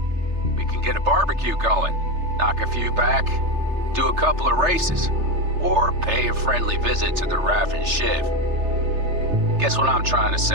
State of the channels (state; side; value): late; left; 3.3 ms